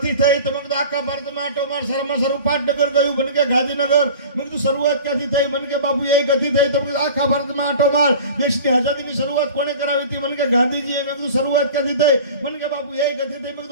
થઈ. તો મેં કીધું આખા ભારતમાં આટો માર, સારામાં સારું પાટનગર કયું? મને કે ગાંધીનગર. મેં કીધું શરૂઆત ક્યાંથી થઈ? મને કે બાપુ એ ગથી થઈ. તો મેં કીધું આખા ભારતમાં આટો માર, દેશની આઝાદીની શરૂઆત કોણે કરાવી હતી? મને કે ગાંધીજીએ. મેં કીધું શરૂઆત ક્યાંથી થઈ? મને કે બાપુ એ ગથી થઈ. મેં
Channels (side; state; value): both; inverted; correlation -0.39